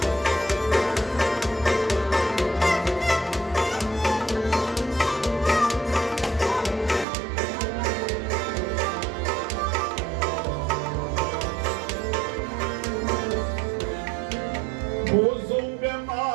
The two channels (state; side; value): drops out; left; at 7.1 s